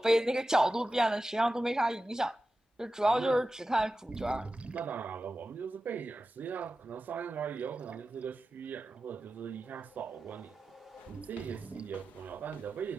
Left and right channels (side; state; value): both; normal; correlation 0.93